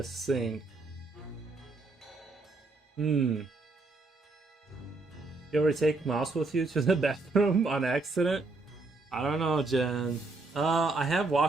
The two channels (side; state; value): left; quieter; 3.4 dB